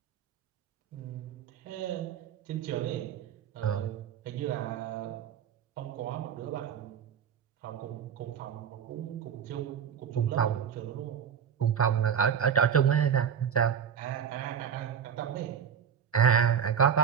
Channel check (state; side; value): quieter; left; 8.0 dB